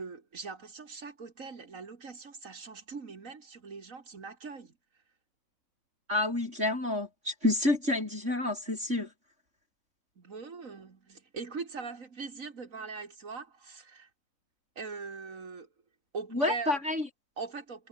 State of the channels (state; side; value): late; left; 3.5 ms